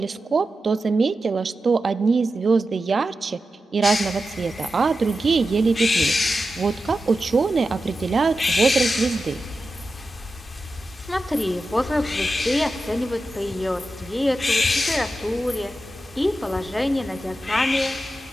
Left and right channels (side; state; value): both; normal; correlation 0.91